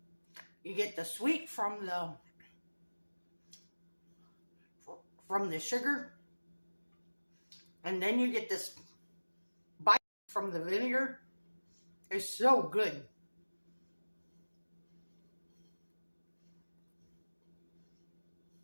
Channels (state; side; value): inverted; both; correlation -1.00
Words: you get the sweet from the sugar, and then you get this bite from the vinegar. It's so good.